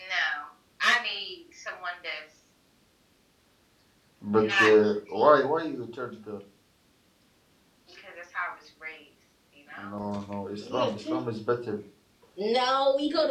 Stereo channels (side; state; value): both; identical; correlation 1.00